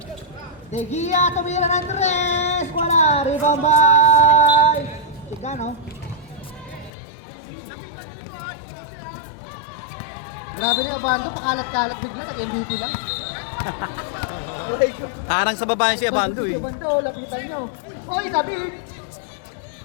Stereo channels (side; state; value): right; drops out; at 6.9 s